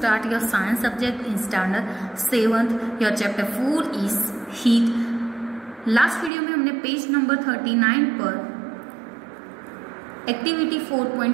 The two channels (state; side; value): drops out; left; at 6.3 s